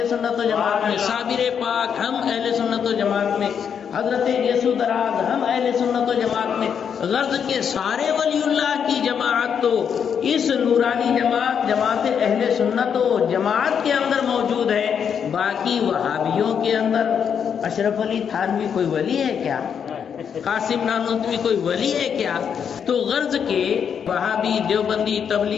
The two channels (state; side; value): quieter; right; 7.5 dB